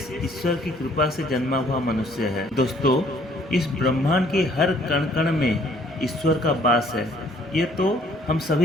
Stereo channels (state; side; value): normal; both; correlation 0.61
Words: ईश्वर की कृपा से जन्मा हुआ मनुष्य है। दोस्तों, इस ब्रह्मांड के हर कण कण में ईश्वर का वास है, ये तो हम